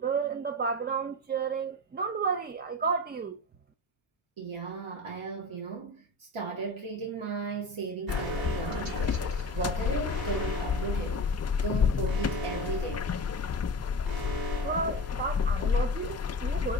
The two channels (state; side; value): normal; both; correlation 0.29